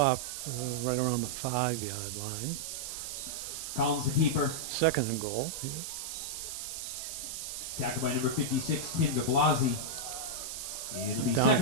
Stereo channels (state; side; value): noise; right; hiss, 6 dB below the sound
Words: right around the 5-yard line. Collins, the keeper. Second and goal. Yeah. Tackled by number 56, Tim de Blasi. It'll be Down